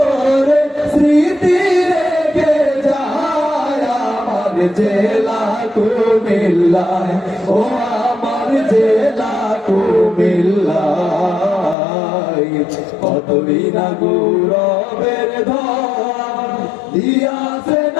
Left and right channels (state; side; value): drops out; right; at 11.8 s